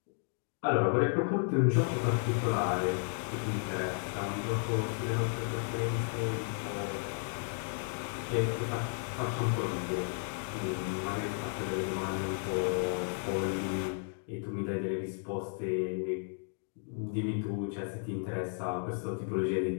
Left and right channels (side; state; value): right; silent; 55 dB below the other